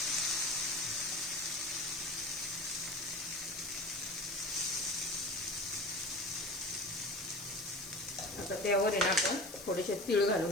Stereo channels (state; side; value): noise; left; hiss, 13 dB below the sound